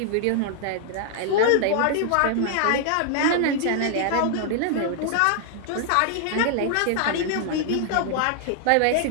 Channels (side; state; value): both; different; correlation 0.00